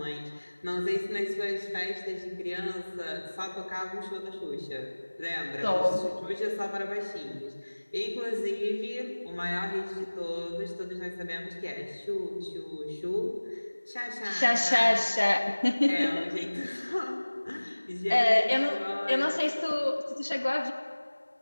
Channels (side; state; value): both; inverted; correlation -1.00